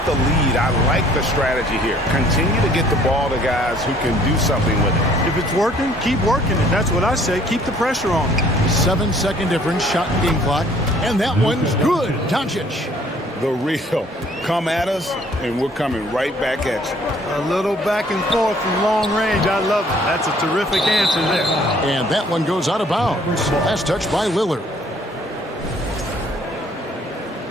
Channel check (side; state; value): both; normal; correlation 0.59